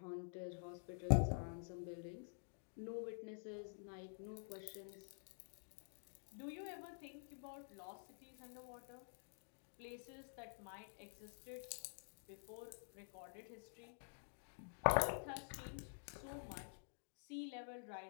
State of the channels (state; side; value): silent; right; digital silence